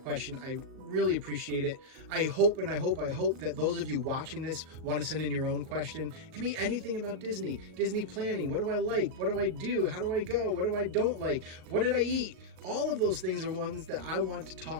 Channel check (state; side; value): late; left; 38 ms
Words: question. I really appreciate it. I hope that those of you watching this want to send in your own question. It can be anything about Disney planning. What do I like? What do I do? How do I go? What do I don't like? What did I eat? All of those things are ones that I want to